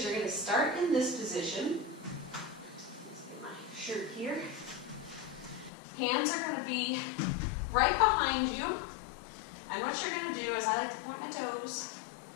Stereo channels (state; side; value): drops out; right; at 5.7 s